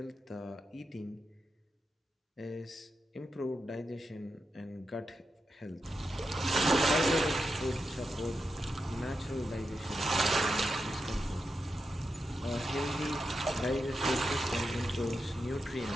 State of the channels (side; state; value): both; normal; correlation 0.87